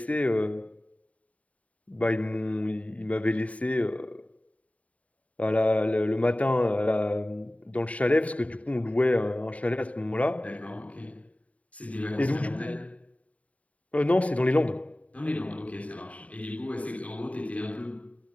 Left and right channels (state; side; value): late; right; 0.067 ms